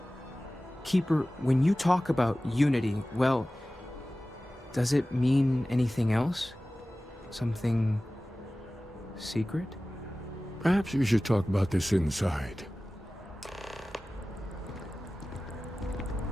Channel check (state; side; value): normal; both; correlation 0.96